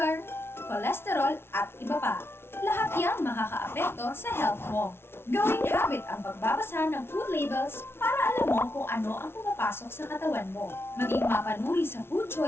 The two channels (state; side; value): late; right; 0.12 ms